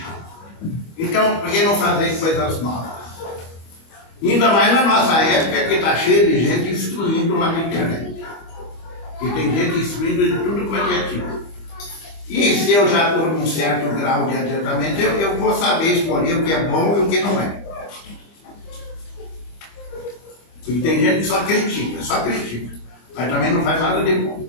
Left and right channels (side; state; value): right; late; 25 ms